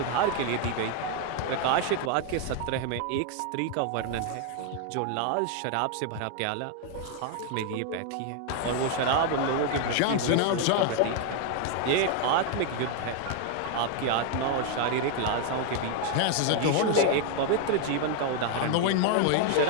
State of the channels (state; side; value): different; both; correlation 0.00